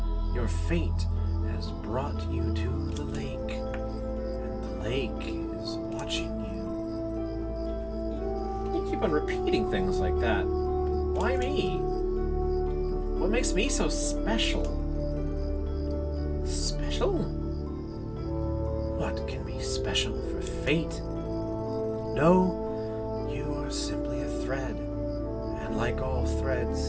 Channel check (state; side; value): identical; both; correlation 1.00